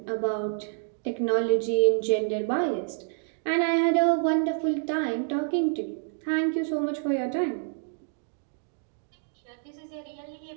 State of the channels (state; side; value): silent; left; digital silence